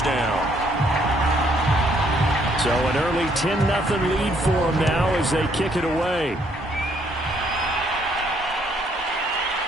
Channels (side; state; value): both; normal; correlation 0.68